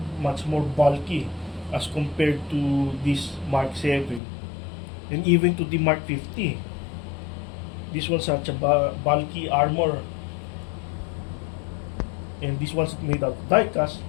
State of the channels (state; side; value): drops out; right; at 4.2 s